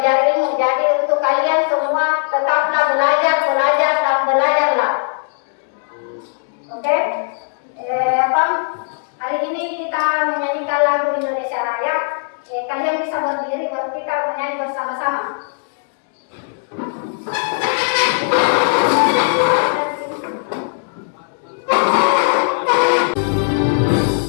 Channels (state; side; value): silent; right; digital silence